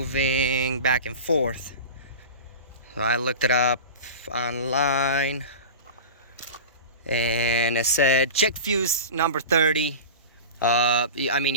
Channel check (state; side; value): inverted; both; correlation -0.31